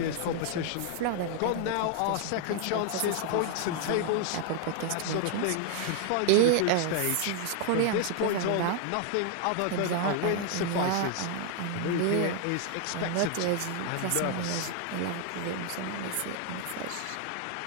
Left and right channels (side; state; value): both; different; correlation 0.00